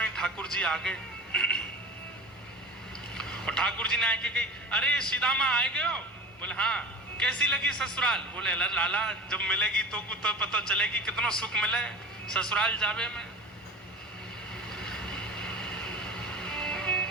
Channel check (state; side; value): normal; both; correlation 0.35